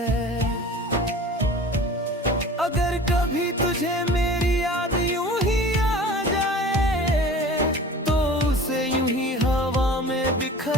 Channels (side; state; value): both; normal; correlation 0.41